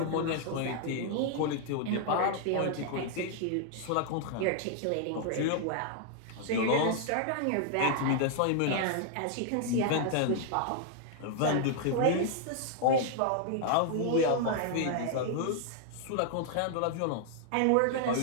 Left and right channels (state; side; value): different; both; correlation 0.00